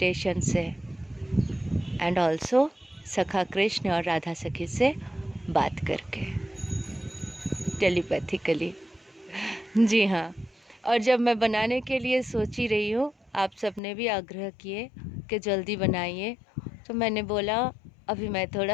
से, एंड ऑल्सो सखा कृष्ण और राधा सखी से बात करके, टेलीपैथिकली। जी हाँ, और जब मैं बनाने के लिए सोची रही हूँ, आप सबने भी आग्रह किए कि जल्दी बनाइए, तो मैंने बोला, अभी मैं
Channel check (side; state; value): right; drops out; at 13.8 s